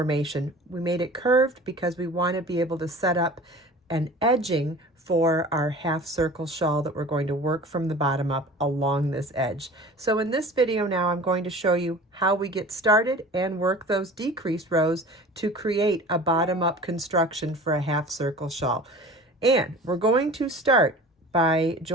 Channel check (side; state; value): both; normal; correlation 0.41